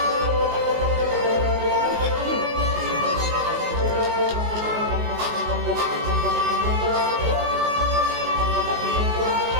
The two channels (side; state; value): left; late; 19 ms